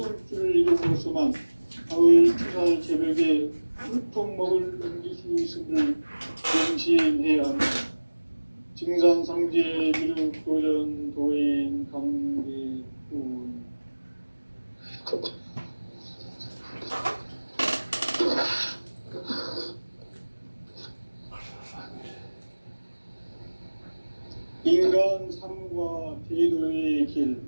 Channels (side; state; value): both; inverted; correlation -1.00